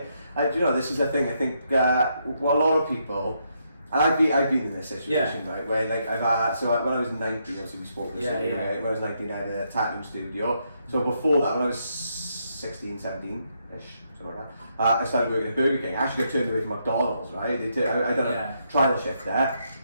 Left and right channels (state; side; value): inverted; both; correlation -0.78